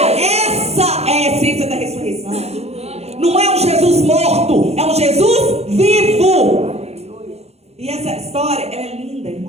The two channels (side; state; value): left; late; 0.31 ms